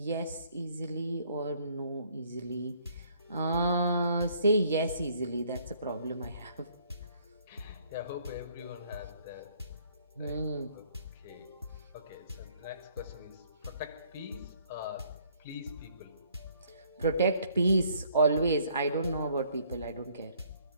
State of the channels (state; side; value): inverted; both; correlation -0.63